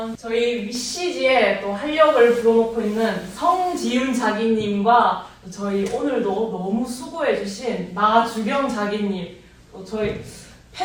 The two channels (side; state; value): both; identical; correlation 1.00